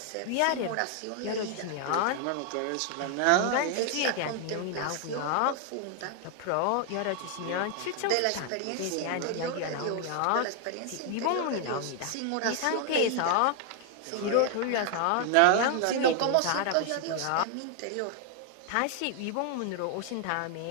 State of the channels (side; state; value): both; different; correlation 0.00